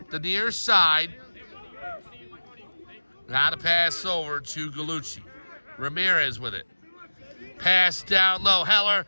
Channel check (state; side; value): inverted; both; correlation -1.00